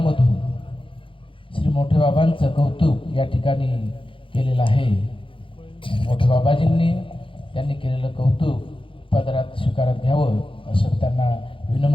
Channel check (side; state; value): right; late; 0.25 ms